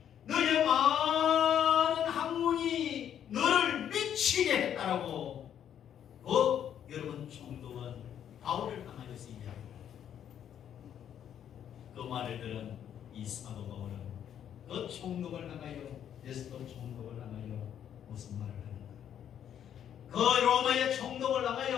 너의 많은 학문이 너를 미치게 했다라고 여러분 총독은 바울을 향하여서 이야기합니다. 그 말을 들은 이 사도 바울은 그 총독을 향하여 베스토 총독을 향하여 무슨 말을 하는가? 그 로마의 총독을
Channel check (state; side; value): quieter; right; 9.6 dB